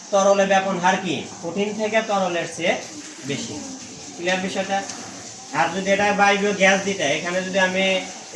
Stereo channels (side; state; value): both; identical; correlation 1.00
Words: তরলে ব্যাপন হার কি কঠিন থেকে তরলের চেয়ে বেশি। ক্লিয়ার বিষয়টা? আর যদি এটা বায়বীয় গ্যাস দিতে, এখানে যদি আমি